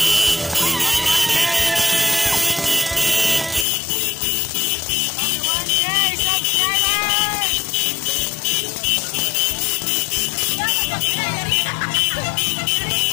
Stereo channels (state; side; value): drops out; right; at 3.7 s